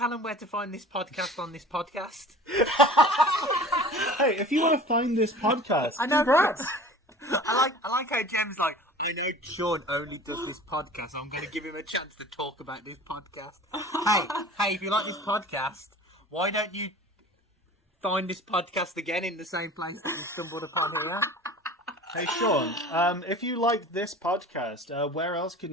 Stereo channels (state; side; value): normal; both; correlation 0.42